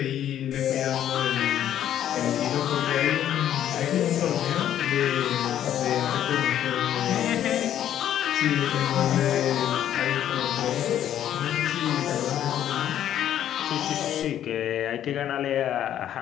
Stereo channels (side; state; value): right; quieter; 10.9 dB